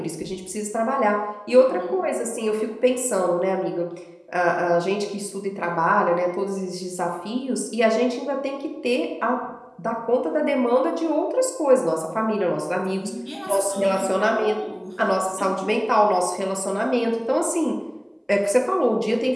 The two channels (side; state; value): both; identical; correlation 1.00